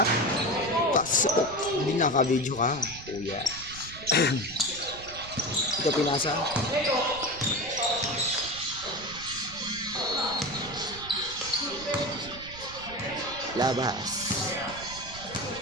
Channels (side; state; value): right; noise; rumble, 16 dB below the sound